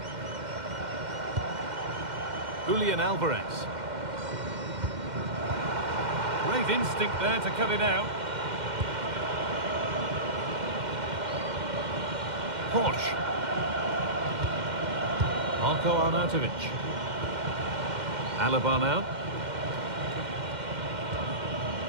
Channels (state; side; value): late; left; 2.1 ms